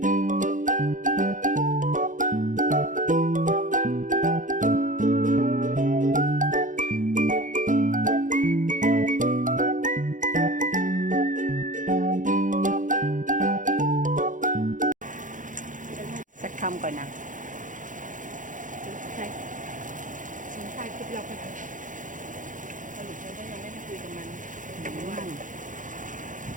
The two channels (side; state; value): left; late; 0.38 ms